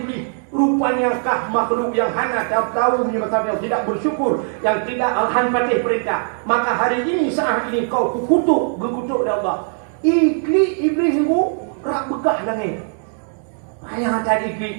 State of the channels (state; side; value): silent; left; 57 dB below the other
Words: Rupanya kah makhluk yang hana tahu masalahnya. Tidak bersyukur. Yang tidak hanfatih perintah. Maka hari ini saat ini kau gekutuk oleh Allah. Iblis itu rak bekah nangis. Ayah tadi iblis